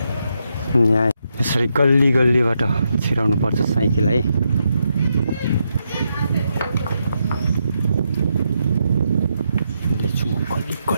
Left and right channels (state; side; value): inverted; both; correlation -0.82